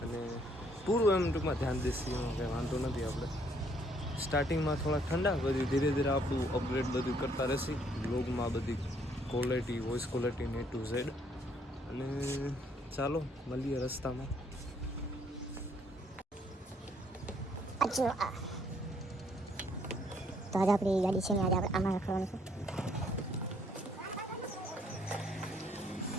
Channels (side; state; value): both; normal; correlation 0.66